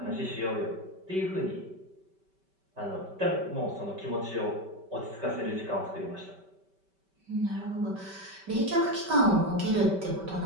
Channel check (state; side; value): late; left; 5.2 ms